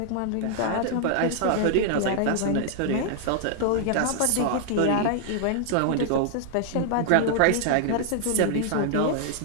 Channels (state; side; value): different; both; correlation -0.01